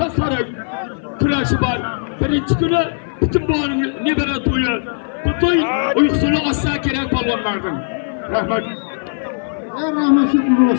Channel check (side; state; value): right; silent; 56 dB below the other